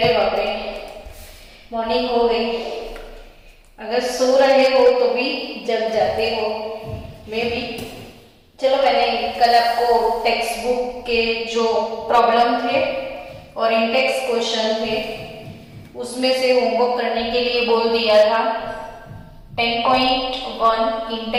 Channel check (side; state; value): both; identical; correlation 1.00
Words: बाप रे मॉर्निंग हो गई। अगर सो रहे हो तो भी जग जाते हो, मैं भी। चलो, मैंने कल आपको टेक्स्ट बुक के जो प्रॉब्लम थे और इंडेक्स क्वेश्चन थे उसमें से होमवर्क करने के लिए बोल दिया था। 10.1